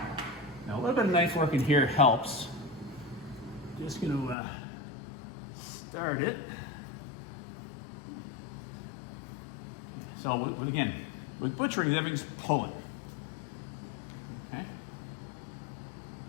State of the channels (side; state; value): right; drops out; at 4.4 s